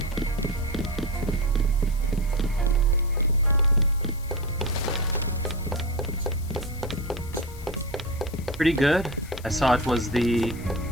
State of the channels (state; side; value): noise; left; hiss, 20 dB below the sound